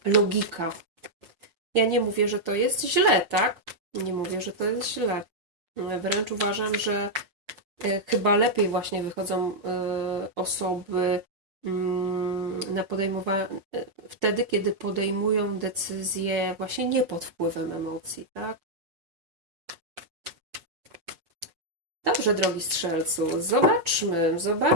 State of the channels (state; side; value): late; left; 6.0 ms